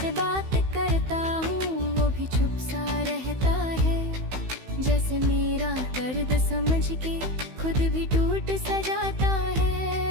बात करता हूँ, वो भी चुप सा रहता है। जैसे मेरा दर्द समझ के खुद भी टूट सा जाता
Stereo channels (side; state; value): left; late; 16 ms